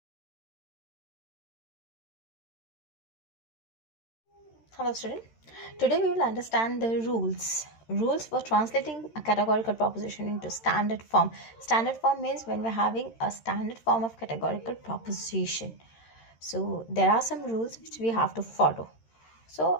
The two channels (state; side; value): late; right; 13 ms